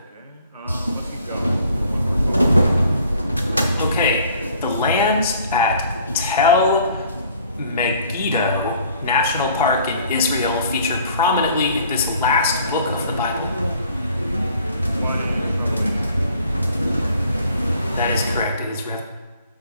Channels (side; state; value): both; inverted; correlation -0.56